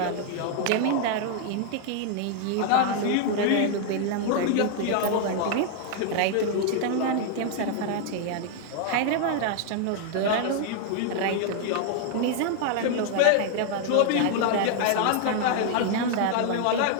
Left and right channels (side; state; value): both; different; correlation 0.00